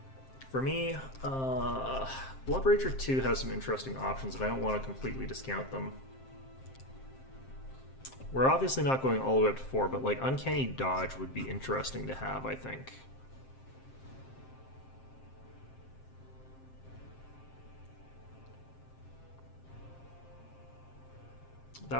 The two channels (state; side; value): late; right; 7.6 ms